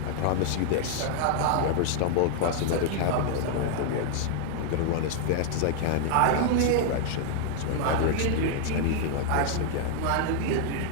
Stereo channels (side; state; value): both; different; correlation 0.00